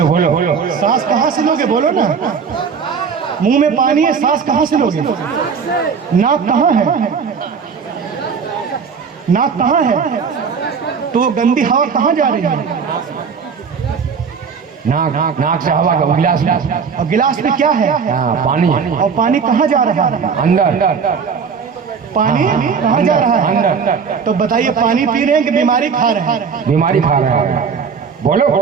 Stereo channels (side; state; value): left; quieter; 6.1 dB